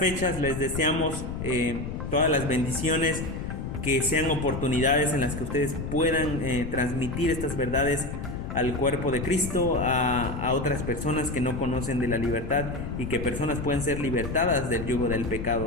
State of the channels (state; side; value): noise; left; rumble, 6 dB below the sound